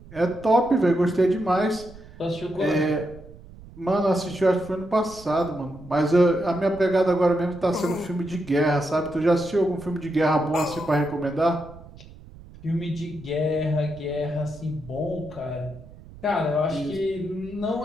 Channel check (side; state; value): right; noise; rumble, 19 dB below the sound